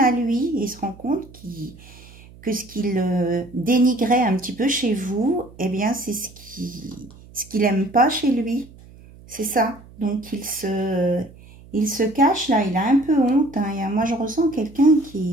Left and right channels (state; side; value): noise; right; hum, 22 dB below the sound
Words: lui. Il se rend compte que ce qu'il dénigrait un petit peu chez vous, eh bien, c'est ce qu'il n'aime pas chez lui. C'est ça. Donc, il se cache, là. Il a un peu honte. Hein. Moi, je ressens quelqu'un